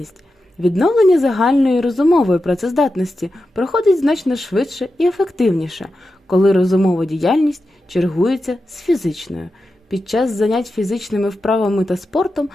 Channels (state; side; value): normal; both; correlation 0.90